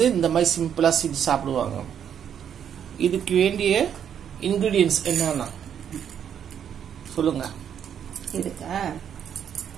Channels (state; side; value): quieter; left; 8.7 dB